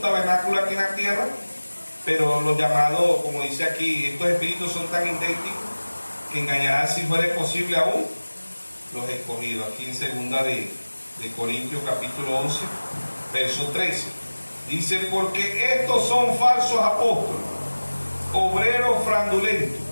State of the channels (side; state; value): both; inverted; correlation -1.00